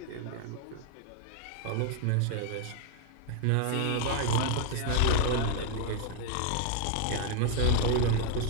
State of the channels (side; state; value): both; different; correlation 0.00